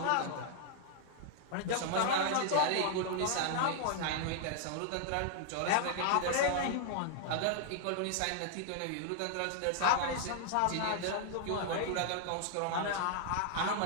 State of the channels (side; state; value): both; different; correlation -0.01